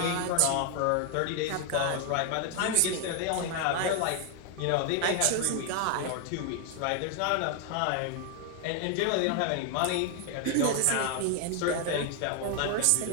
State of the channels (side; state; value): both; different; correlation 0.00